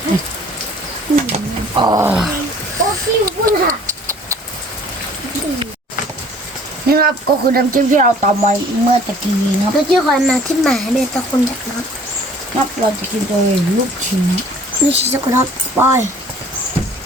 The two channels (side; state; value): both; normal; correlation 0.53